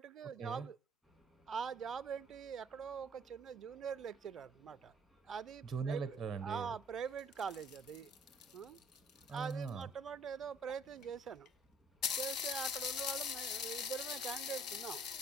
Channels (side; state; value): both; normal; correlation 0.58